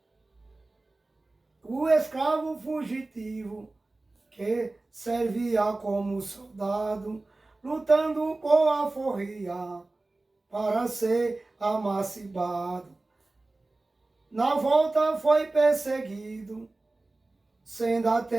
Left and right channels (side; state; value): left; quieter; 3.1 dB